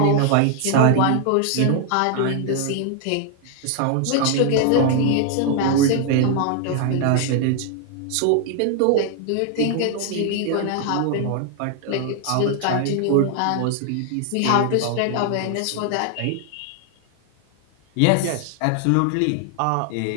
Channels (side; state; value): both; different; correlation 0.00